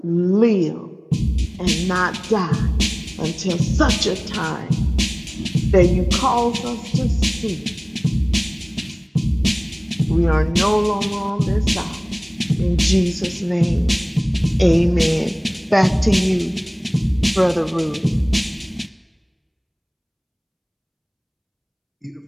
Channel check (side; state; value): both; identical; correlation 1.00